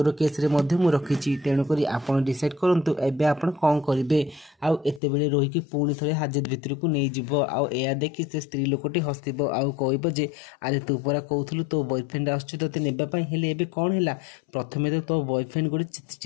केस रे मध्ये मु रखिची तेणु करी आपण डिसाइड करंतु एबे आपण कोन करिवे आउ एते बेले रोही की पुणी थरे हाजत भितर को नै जिवो आउ एया देखि से स्त्री लोकटी हसिबो आउ कहबो जे अरे तू परा कहउथलु तो बॉयफ्रेंड आछु तते नेबा पई हेले एबे कोन हैला प्रथमे तो बॉयफ्रेंड गोटे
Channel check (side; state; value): right; drops out; at 5.0 s